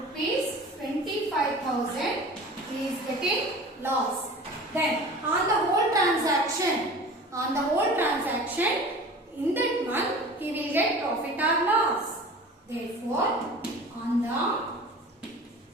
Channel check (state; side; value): normal; both; correlation 0.40